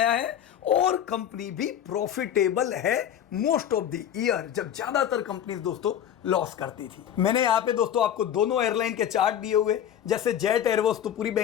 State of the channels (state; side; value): quieter; right; 10.0 dB